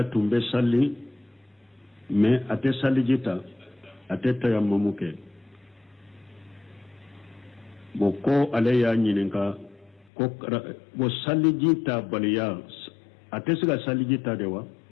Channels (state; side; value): drops out; right; at 10.1 s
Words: tun bɛ sali mais a tɛ saliji ta a tɛ tayamamu kɛ bon ko ale y'a ɲininka ko bon saliji ta baliya a tɛ se ka saliji ta de wa